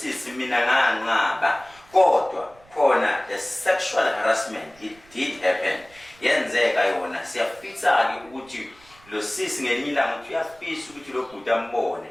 mina nganqaba kodwa khona the sexual harassment it did happen yenzeka yona siyafisa ke ukuthi lo sisi ngelinye ilanga uthi uyafisa ukuthi lo bhuti ambone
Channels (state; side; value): noise; right; rumble, 28 dB below the sound